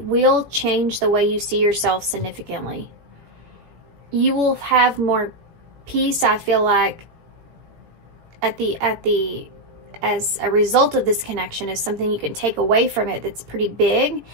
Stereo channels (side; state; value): left; late; 17 ms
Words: will change the way you see yourself significantly. You will have more peace, I feel like, as a result of this connection. Is something you can take away from it that's pretty big,